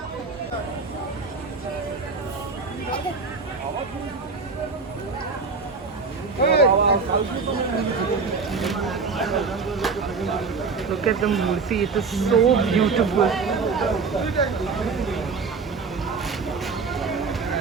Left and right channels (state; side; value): quieter; left; 4.7 dB